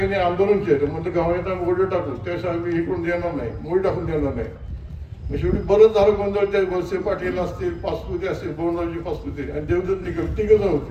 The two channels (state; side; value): identical; both; correlation 1.00